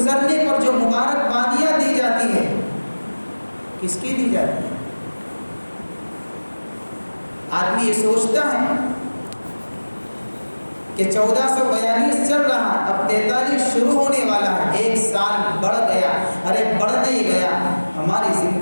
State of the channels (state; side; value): inverted; both; correlation -1.00